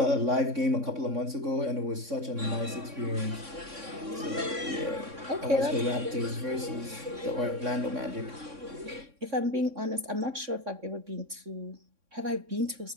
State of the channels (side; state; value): left; late; 3.6 ms